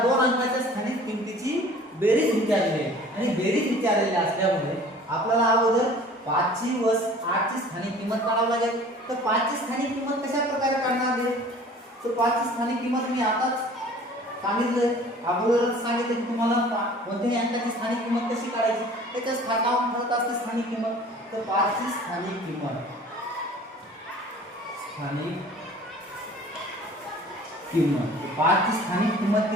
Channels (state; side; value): normal; both; correlation 0.48